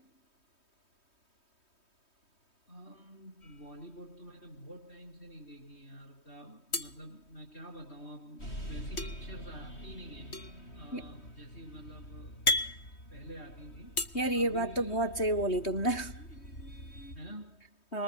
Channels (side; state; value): right; late; 3.2 ms